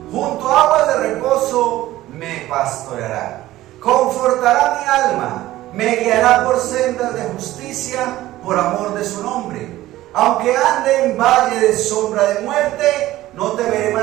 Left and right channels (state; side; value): quieter; left; 15.7 dB